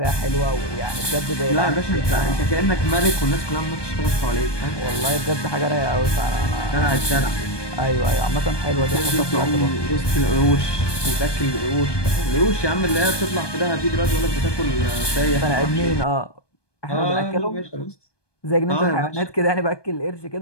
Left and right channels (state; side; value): late; right; 1.2 ms